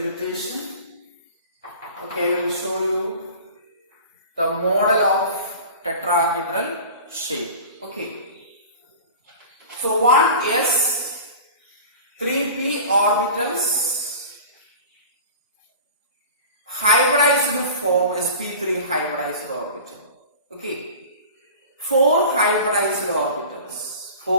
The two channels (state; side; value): inverted; both; correlation -0.38